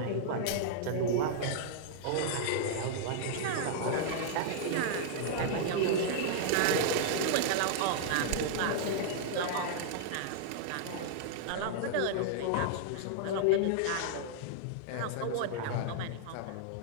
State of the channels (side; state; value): both; different; correlation -0.01